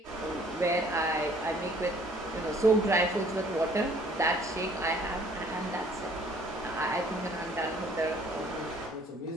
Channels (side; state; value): both; normal; correlation 0.58